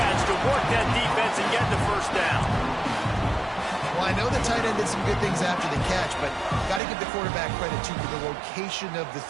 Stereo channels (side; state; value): left; drops out; at 6.8 s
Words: to work that defense and get the first down. Well, I know the tight end did some good things after the catch, but got to give the quarterback credit, too, for the location of the